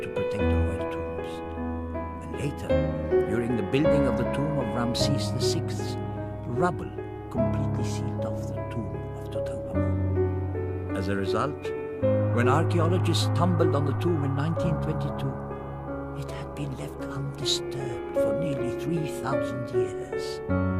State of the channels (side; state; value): both; identical; correlation 1.00